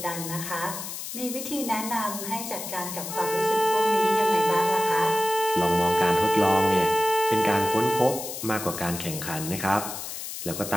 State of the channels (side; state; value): left; noise; hiss, 8 dB below the sound